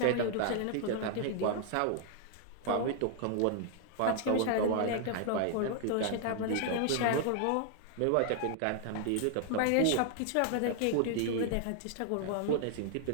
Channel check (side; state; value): both; different; correlation 0.00